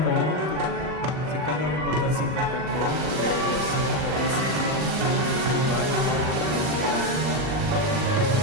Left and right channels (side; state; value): left; late; 39 ms